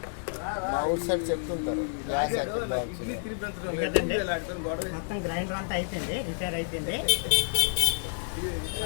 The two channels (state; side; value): silent; right; 58 dB below the other